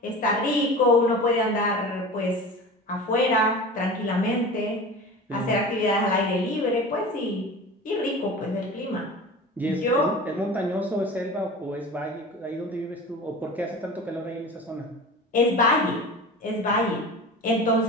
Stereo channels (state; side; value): normal; both; correlation 0.34